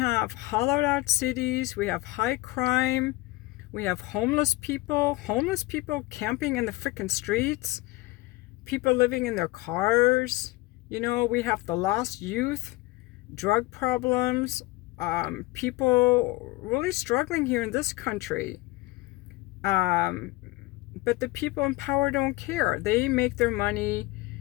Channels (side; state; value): right; quieter; 20.3 dB